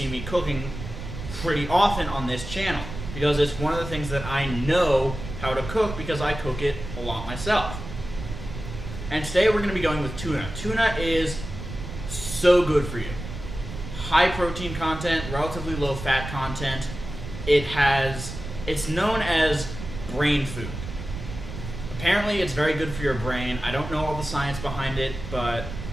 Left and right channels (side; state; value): right; noise; rumble, 9 dB below the sound